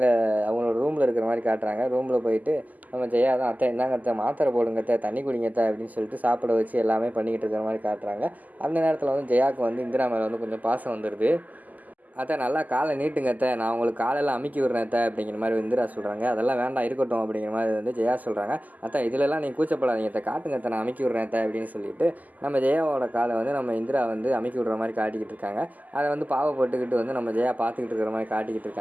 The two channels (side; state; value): left; late; 0.080 ms